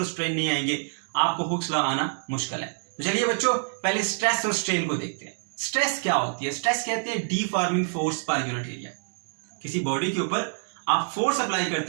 स्ट्रेन नहीं आएंगे आपको हुक्स लॉ आना मुश्किल है। तो चलिए बच्चों, पहले स्ट्रेस और स्ट्रेन को देखते हैं। स्ट्रेस क्या होती है? स्ट्रेस कहते हैं deforming force per unit area. किसी बॉडी के ऊपर आप फोर्स अप्लाई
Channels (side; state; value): left; silent; 60 dB below the other